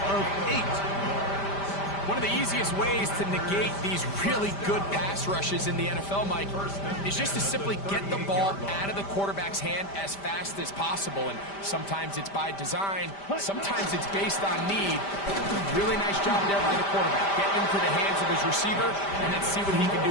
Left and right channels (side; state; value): right; late; 5.1 ms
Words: of 8. One of the easiest ways to negate these really good pass rushes in the NFL, Mike, is just to simply get the ball out of the quarterback's hand as fast as possible. And sometimes it's by design, sometimes it's based on need. Really nice job there by the quarterback. Get into the hands of his receiver and then see what he can